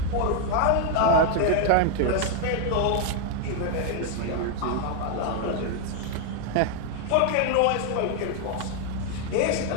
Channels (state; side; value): different; both; correlation 0.00